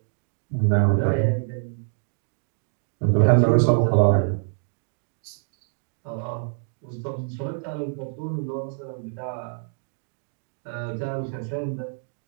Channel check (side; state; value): left; silent; digital silence